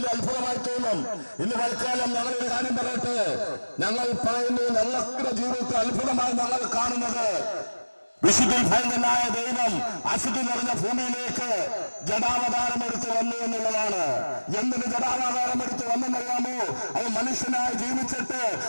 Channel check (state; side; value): inverted; both; correlation -1.00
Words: അത്ഭുതമായി തോന്നും. ഇന്ന് തൽക്കാലം ഞങ്ങളൊരു കാര്യം പറയട്ടെ, ഞങ്ങൾ പറയുന്നു ഞങ്ങളുടെ ജീവിതത്തിൽ അത്ഭുതമായി ഞങ്ങൾ കാണുന്നത് വിശുദ്ധിയിൽ ഭയങ്കരനായ ദൈവം അശുദ്ധി നിറഞ്ഞ ഭൂമിയിലേക്ക് ജഡാവതാരം എടുത്ത് വന്നു എന്നുള്ളതാണ്. എന്തിന് ജഡാവതാരം എടുത്ത് വന്നെന്നറിയാമോ? അത് മനുഷ്യനായി ജീവിച്ചിട്ട്